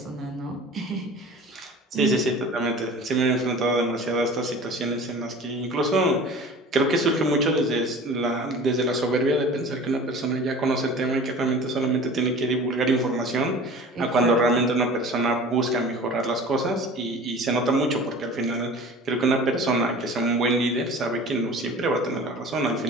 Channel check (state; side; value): normal; both; correlation 0.41